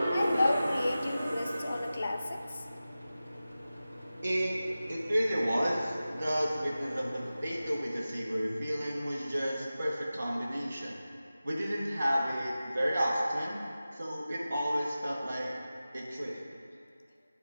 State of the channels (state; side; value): inverted; both; correlation -0.95